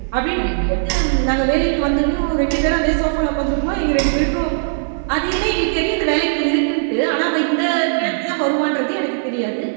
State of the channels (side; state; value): left; silent; 57 dB below the other